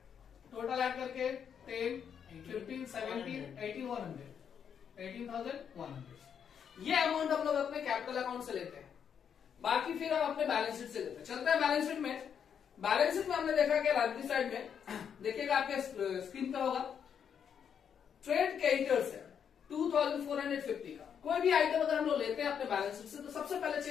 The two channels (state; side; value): quieter; right; 7.8 dB